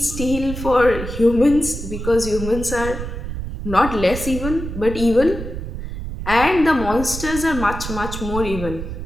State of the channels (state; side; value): noise; right; rumble, 7 dB below the sound